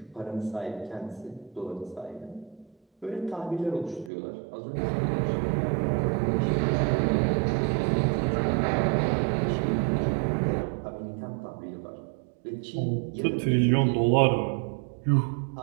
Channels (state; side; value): drops out; left; at 4.1 s